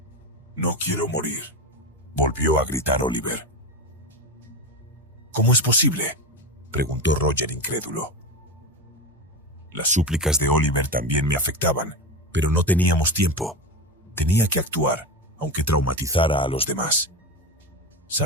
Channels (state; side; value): normal; both; correlation 0.20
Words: no quiero morir, volvió a gritar Oliver. ¿Cómo es posible?, preguntó Roger incrédulo. Las súplicas de Oliver también me afectaban, pero no teníamos tiempo. Tenía que actuar, aunque traumatizara a los demás.